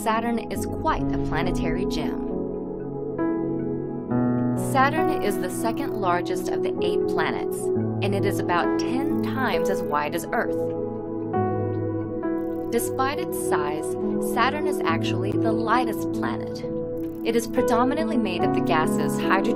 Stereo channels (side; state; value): both; identical; correlation 1.00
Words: Saturn is quite a planetary gem. Saturn is the second largest of the 8 planets, and it is about 10 times as wide as Earth. Despite its size, Saturn is actually the lightest planet. It is predominantly made of the gases